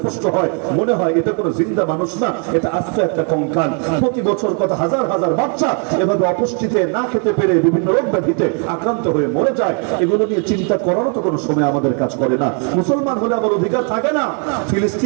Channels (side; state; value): left; quieter; 39.3 dB